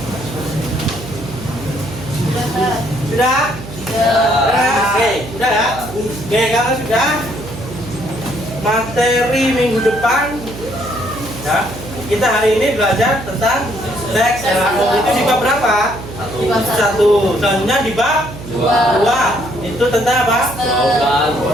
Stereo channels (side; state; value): right; noise; hum, 12 dB below the sound